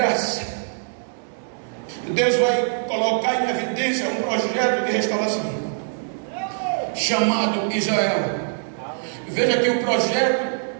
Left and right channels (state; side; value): silent; left; digital silence